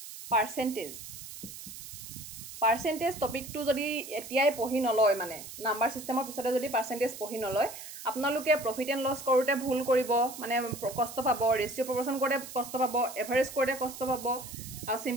পাৰ্সেন্টেজ টপিকটো যদি এতিয়াই পঢ়ি নলয় মানে নাম্বাৰ সিস্টেমৰ পিছতে যদি পাৰ্সেন্টেজ পঢ়ি নলয় আপোনালোকে প্ৰফিট এণ্ড লছ কৰোতে ভুল কৰিব মানে কষ্ট পাব ৰেশিও প্ৰপৰচন কৰোতে কষ্ট পাব এভাৰেজ কৰোতে কষ্ট পাব আৰু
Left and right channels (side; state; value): right; noise; hiss, 12 dB below the sound